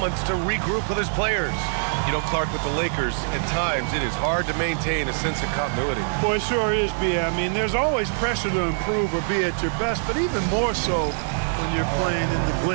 to regroup with his players. You know, Clark, with the Lakers, at times it is hard to maintain a sense of continuity. Boy, it sure is, B. I mean, there's always pressure to improve or be at your best, but even more so when you're playing in the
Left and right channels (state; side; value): silent; left; 62 dB below the other